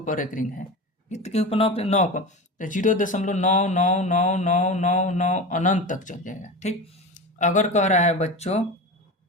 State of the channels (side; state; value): both; normal; correlation 0.26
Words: रेकरिंग है, कितने के ऊपर, 9 पर, तो 0.9999999 अनंत तक चल जाएगा। ठीक, अगर कह रहा है बच्चों